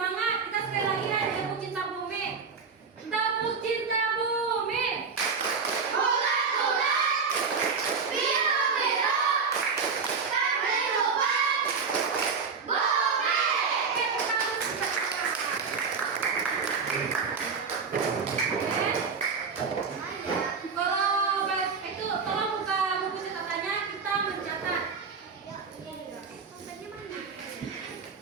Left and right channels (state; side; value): quieter; left; 5.3 dB